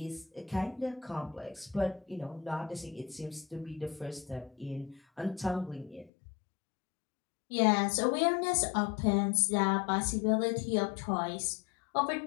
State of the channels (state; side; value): drops out; right; at 6.1 s